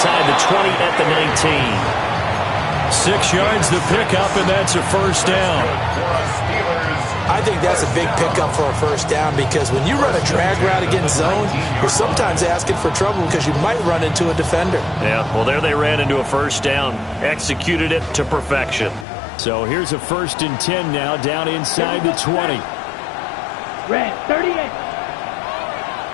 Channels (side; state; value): right; drops out; at 19.1 s